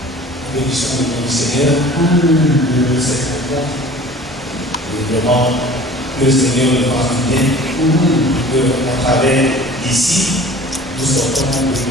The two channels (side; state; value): both; normal; correlation 0.45